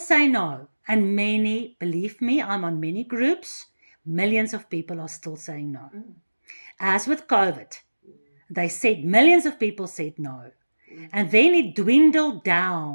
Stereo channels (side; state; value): both; inverted; correlation -1.00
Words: no. And many, believe me, I'm on many groups, millions of people are still saying no. As with COVID, they said, millions of people said no. And then it dwindled